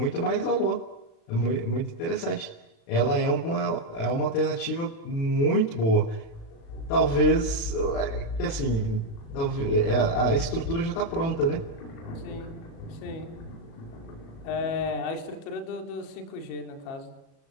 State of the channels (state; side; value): late; right; 36 ms